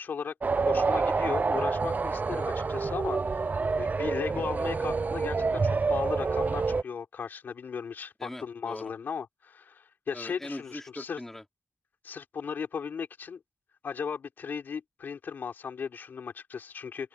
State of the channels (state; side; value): normal; both; correlation 0.84